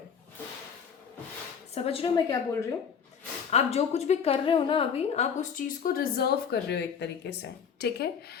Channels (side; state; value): right; quieter; 7.0 dB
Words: समझ रहे हो मैं क्या बोल रही हूँ? आप जो कुछ भी कर रहे हो ना अभी, आप उस चीज़ को रिजर्व कर रहे हो एक तरीके से। ठीक है,